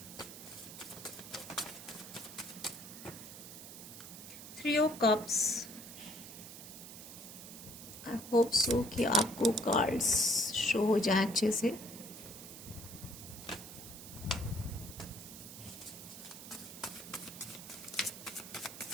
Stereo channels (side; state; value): right; noise; hiss, 13 dB below the sound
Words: three of cups. I hope so कि आपको कार्ड्स शो हो जाए अच्छे से।